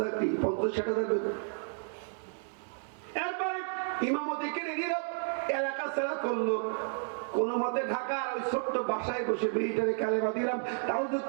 50-60 হাজার বেতন। এরপরে ইমামতি কিনে দিল, এলাকা ছাড়া করলো, কোন মতে ঢাকার ওই ছোট্ট বাসায় বসে মেয়েটারে কালেমা দিলাম, তাও যে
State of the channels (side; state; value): left; silent; 56 dB below the other